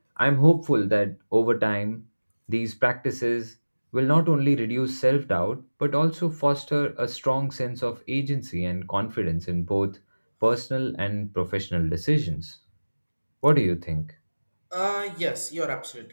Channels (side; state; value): both; inverted; correlation -1.00